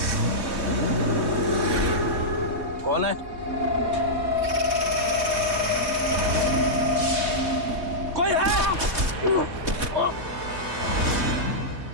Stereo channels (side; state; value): left; late; 3.2 ms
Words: कौन है? कोई है?